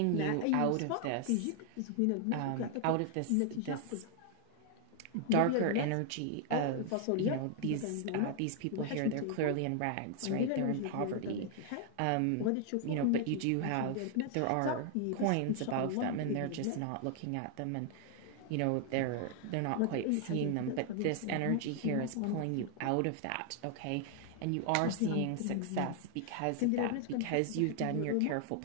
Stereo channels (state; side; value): different; both; correlation 0.00